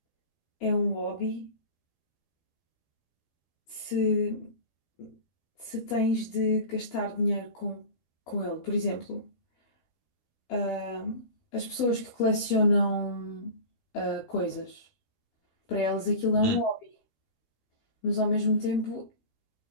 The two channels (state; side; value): late; right; 12 ms